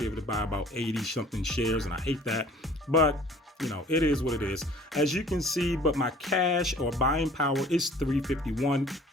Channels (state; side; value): normal; both; correlation 0.51